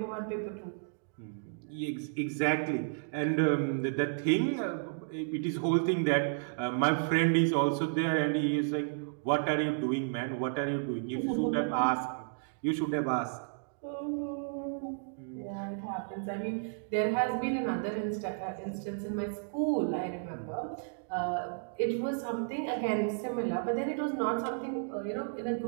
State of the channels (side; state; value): left; silent; digital silence